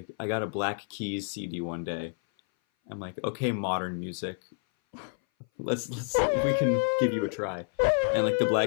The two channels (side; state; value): right; silent; 58 dB below the other